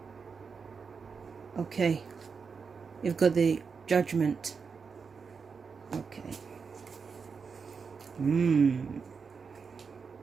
Okay, you've got the Judgment. Okay.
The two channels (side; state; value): left; quieter; 5.5 dB